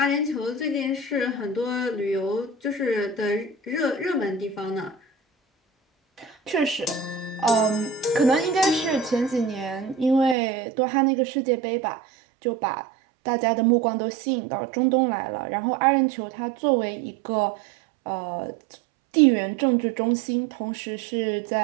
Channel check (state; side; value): drops out; left; at 10.4 s